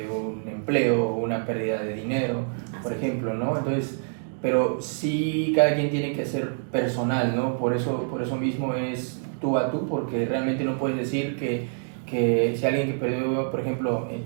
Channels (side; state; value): left; silent; digital silence